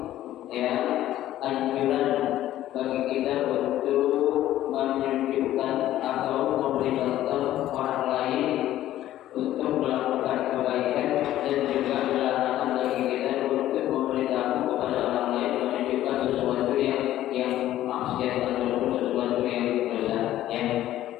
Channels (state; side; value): quieter; right; 13.4 dB